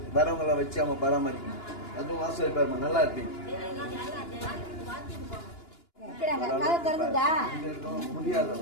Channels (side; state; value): right; late; 2.9 ms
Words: வரவங்களை வச்சு அவங்க பராமரிக்கணும். அதுவும் ஆசிரியர் நல்லா இருப்பீங்க.